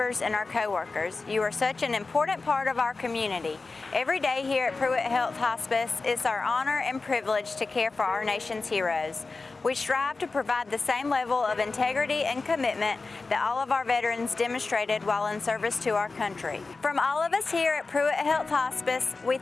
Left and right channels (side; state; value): right; quieter; 3.9 dB